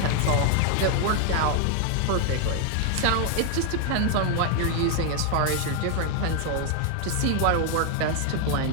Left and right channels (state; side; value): different; both; correlation 0.00